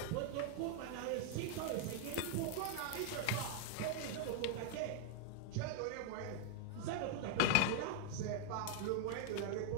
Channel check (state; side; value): different; both; correlation 0.00